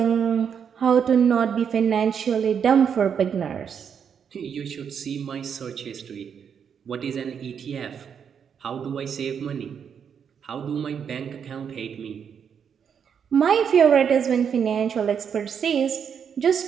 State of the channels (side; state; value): left; quieter; 7.4 dB